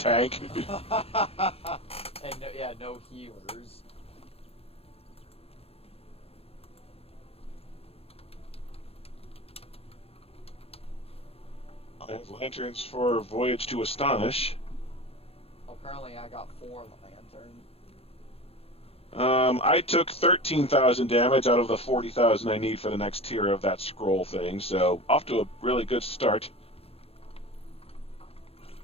And no healers. I have lanterns for Voyage to Astonish. Currently, I got 4 Lantern. I took 13,000 damage out of the 40,000 I need for the next tier of that scroll thing, so off to a really good start.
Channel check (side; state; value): right; late; 0.29 ms